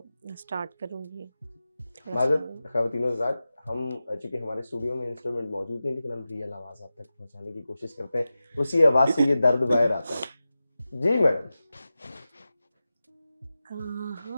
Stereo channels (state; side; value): inverted; both; correlation -0.94